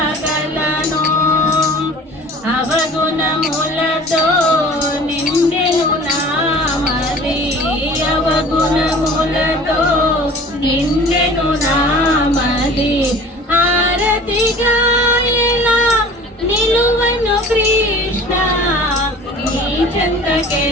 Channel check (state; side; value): normal; both; correlation 0.44